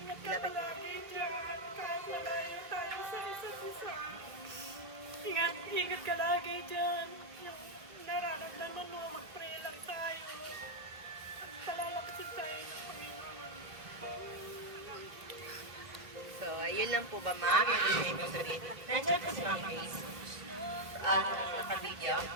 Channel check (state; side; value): late; left; 2.3 ms